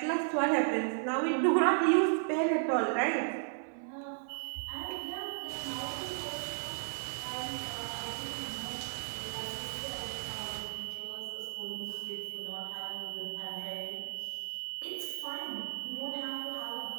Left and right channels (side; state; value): left; silent; digital silence